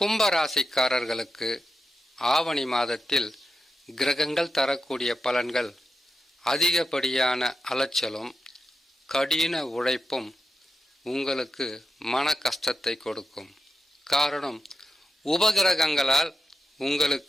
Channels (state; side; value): normal; both; correlation 0.88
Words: ராசிக்காரர்களுக்கு ஆவணி மாதத்தில் கிரகங்கள் தரக்கூடிய பலன்கள் அதிகப்படியான அலைச்சலும் கடின உழைப்பும் உங்களுக்கு மன கஷ்டத்தை கொடுக்கும். காரணம், உபகிரகங்களால்